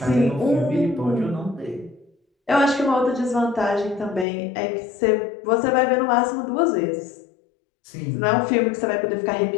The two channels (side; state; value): right; drops out; at 4.2 s